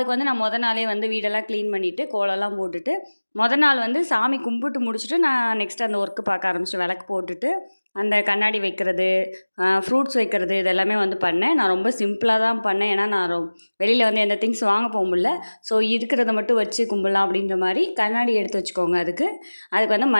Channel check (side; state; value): both; inverted; correlation -1.00